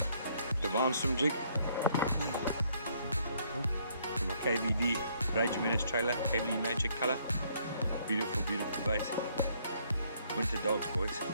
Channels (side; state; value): both; inverted; correlation -0.67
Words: Divine Swim Jig. From a KVD Rage Menace trailer, KVD Magic color. Beautiful, beautiful bait. Winter dogs, boys.